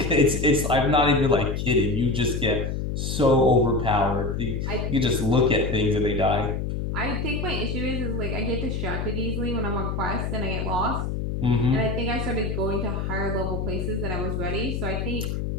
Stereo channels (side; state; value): left; noise; hum, 2 dB below the sound